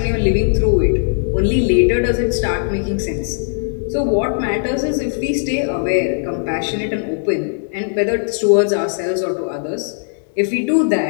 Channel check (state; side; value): silent; right; 64 dB below the other